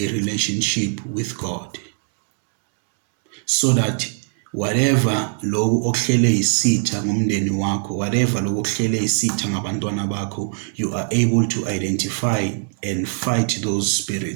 relationship with God, so that whatever loku okuhlele isitha ngomndeni wakho, whatever loku okuhlele isitha ngabantwana bakho, you are able to identify and fight those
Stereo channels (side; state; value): left; silent; 64 dB below the other